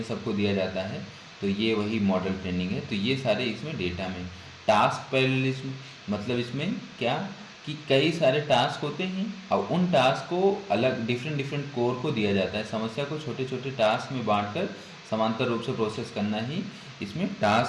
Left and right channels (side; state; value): both; identical; correlation 1.00